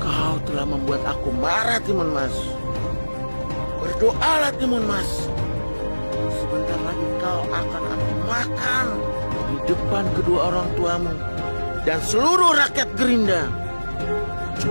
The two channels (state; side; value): inverted; both; correlation -1.00